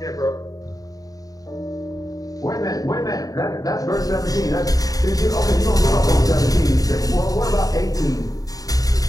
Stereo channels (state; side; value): late; right; 0.18 ms